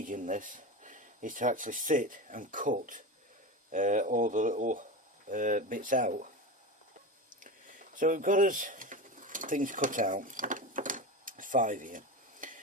in this is to actually sit and cut all the little bits out. So we've got us things cut out, 5 here.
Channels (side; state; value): both; normal; correlation 0.23